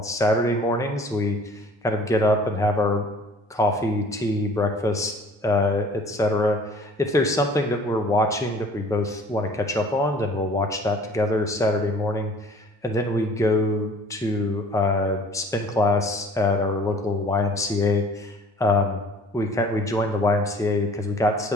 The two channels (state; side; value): normal; both; correlation 0.50